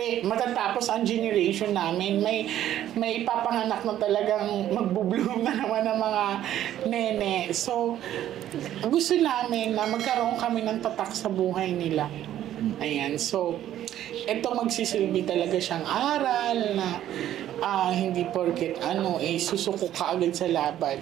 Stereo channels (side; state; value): left; quieter; 12.0 dB